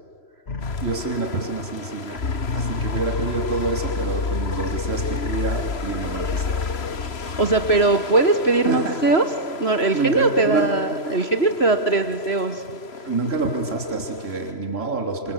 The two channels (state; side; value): late; right; 3.0 ms